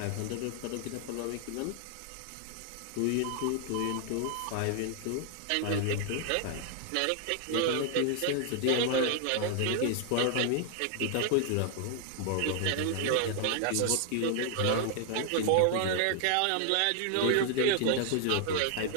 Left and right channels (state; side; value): different; both; correlation 0.00